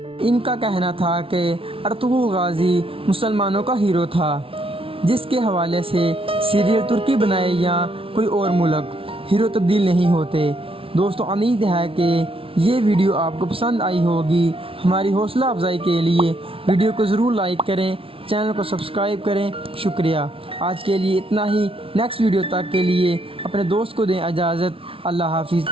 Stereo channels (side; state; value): left; late; 0.26 ms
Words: ان کا کہنا تھا کہ ارطغرل غازی مسلمانوں کا ہیرو تھا، جس کے حوالے سے سیریل ترکی بنائے یا کوئی اور ملک، ہیرو تبدیل نہیں ہوتے۔ دوستو، امید ہے کہ یہ ویڈیو آپ کو پسند آئی ہوگی۔ ہماری حوصلہ افزائی کے لیے ویڈیو کو ضرور لائک کریں، چینل کو سبسکرائب کریں۔ شکریہ۔ آج کے لیے اتنا ہی۔ نیکسٹ ویڈیو تک کے لیے اپنے دوست کو دیں اجازت۔ اللہ حافظ۔